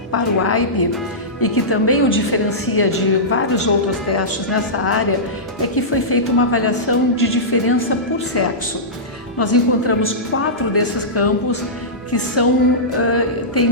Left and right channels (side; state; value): both; normal; correlation -0.16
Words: para o AIP e que também o diferencia de vários outros testes nessa área, é que foi feita uma avaliação de diferença por sexo. Nós encontramos 4 desses campos que